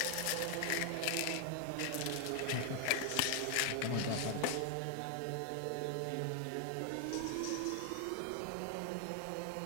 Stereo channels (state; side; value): different; both; correlation 0.00